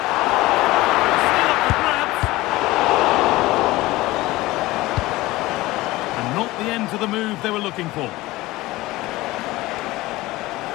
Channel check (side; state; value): right; quieter; 18.9 dB